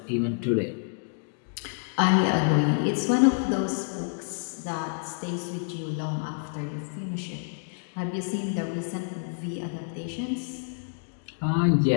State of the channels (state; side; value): silent; right; digital silence